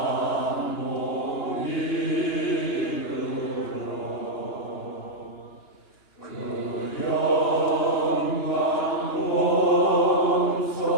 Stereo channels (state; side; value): late; right; 2.9 ms